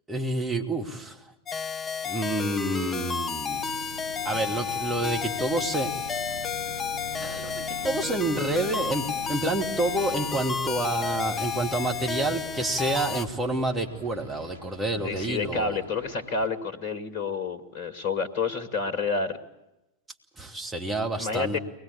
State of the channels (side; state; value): both; normal; correlation 0.45